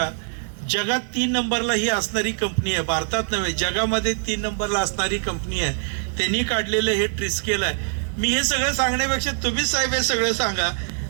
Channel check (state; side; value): silent; left; 63 dB below the other